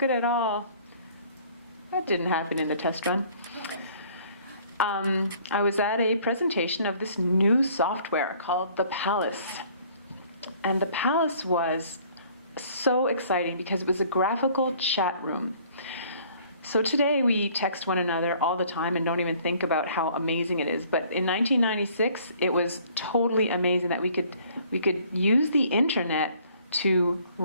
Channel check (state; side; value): inverted; both; correlation -0.57